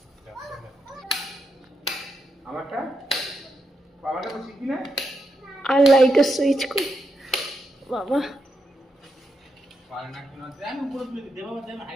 আমারটা বাবাটা তো শিখি না। আর লাইটের সুইচ করি বাবা। পারে না কেন, আমি উপরে তুলে দিতে বাবা, আমি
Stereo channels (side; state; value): both; normal; correlation 0.84